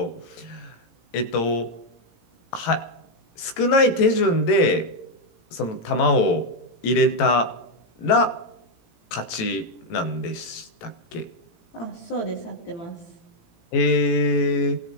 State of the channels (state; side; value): late; right; 18 ms